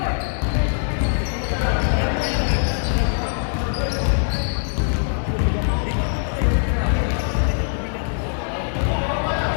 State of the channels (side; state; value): right; silent; digital silence